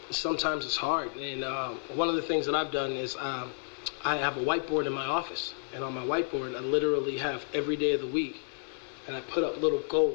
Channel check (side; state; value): right; silent; 57 dB below the other